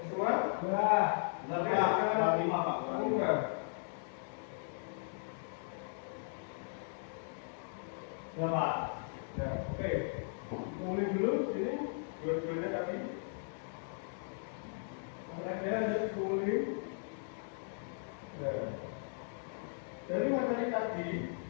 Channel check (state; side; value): silent; right; digital silence